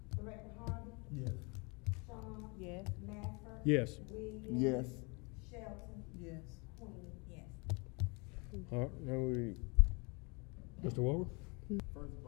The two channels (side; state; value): right; quieter; 30.7 dB